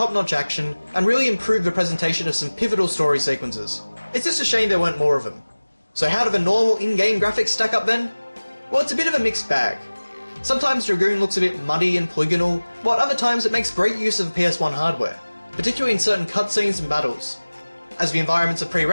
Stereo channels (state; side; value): inverted; both; correlation -1.00